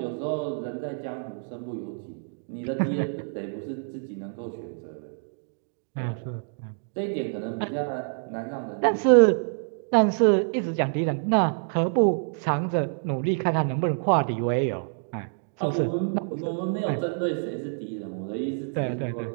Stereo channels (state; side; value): silent; left; digital silence